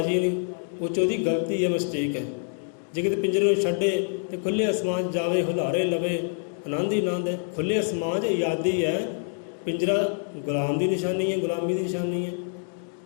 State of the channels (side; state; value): right; silent; 61 dB below the other